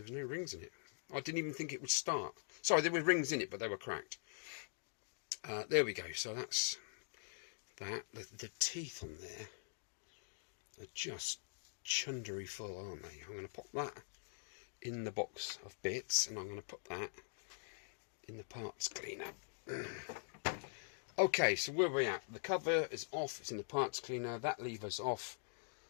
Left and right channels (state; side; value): silent; right; digital silence